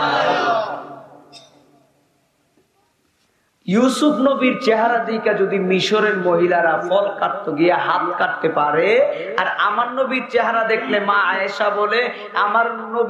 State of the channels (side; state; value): both; identical; correlation 1.00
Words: ইউসুফ নবীর চেহারা দিকে যদি মিশরের মহিলারা ফল কাটতে গিয়ে হাত কাটতে পারে, আর আমার নবীর চেহারা দেখলে মা আয়েশা বলে, আমার